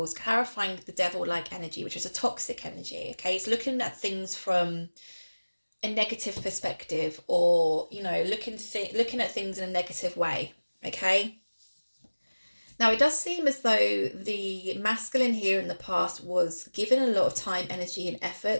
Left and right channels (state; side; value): inverted; both; correlation -1.00